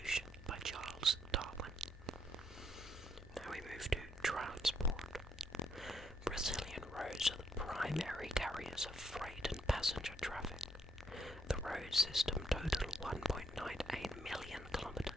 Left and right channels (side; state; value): both; normal; correlation 0.74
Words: by Charles Darwin. Now we move to transport. Brazilian roads are the primary carriers of freight and passenger traffic. The road system totaled 1.98 million